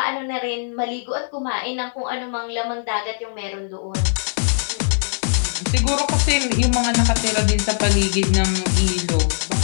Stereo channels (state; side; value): silent; right; digital silence